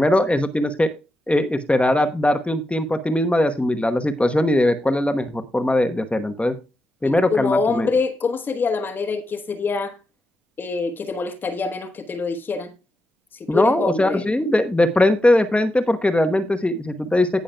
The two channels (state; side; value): normal; both; correlation 0.87